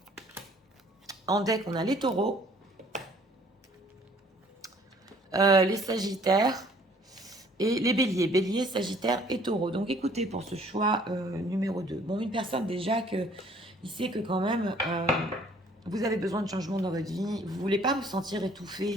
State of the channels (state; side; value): normal; both; correlation 0.58